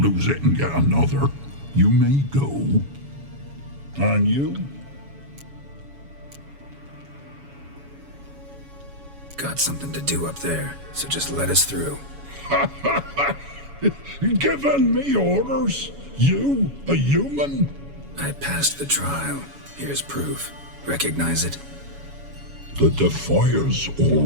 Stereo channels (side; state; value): left; late; 7.1 ms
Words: it and get another. You may go. And you? Got something to do up there, so just let us through. Giving me orders? You, a human? I passed the trial. Here's proof. Recognize it? The Defier's